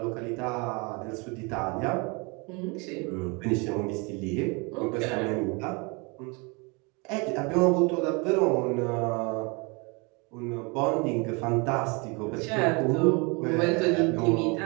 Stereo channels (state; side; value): quieter; left; 29.8 dB